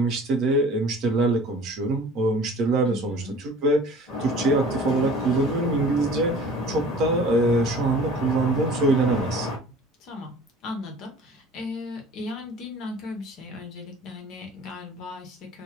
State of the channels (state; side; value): normal; both; correlation 0.46